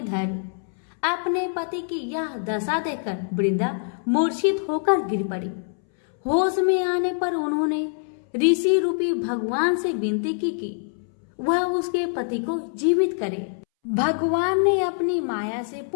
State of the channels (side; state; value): right; silent; 62 dB below the other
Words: धड़। अपने पति की यह दशा देखकर वृंदा मूर्छित होकर गिर पड़ी। होश में आने पर उन्होंने ऋषि रूपी भगवान से विनती की कि वह उसके पति को जीवित करे। भगवान ने अपनी माया से